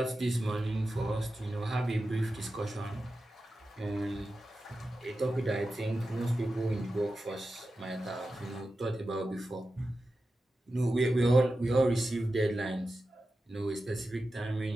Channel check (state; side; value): normal; both; correlation 0.92